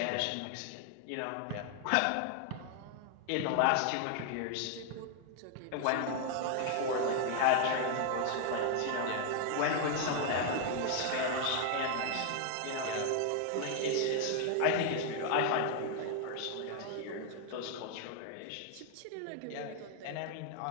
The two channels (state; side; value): different; both; correlation 0.00